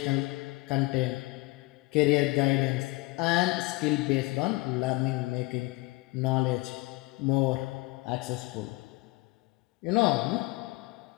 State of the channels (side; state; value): right; quieter; 23.3 dB